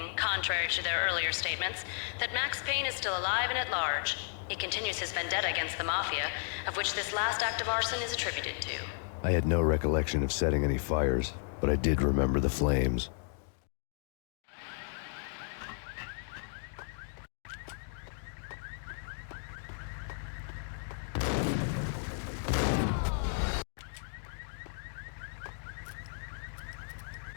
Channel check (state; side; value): silent; right; digital silence